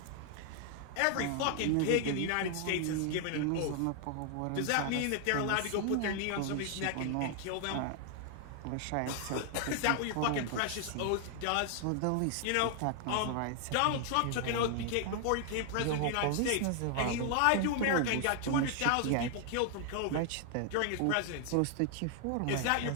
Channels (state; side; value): different; both; correlation 0.00